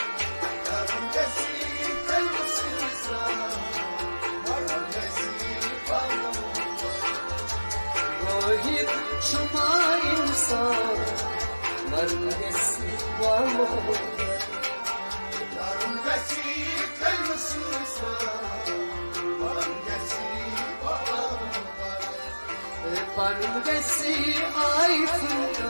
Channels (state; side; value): inverted; both; correlation -1.00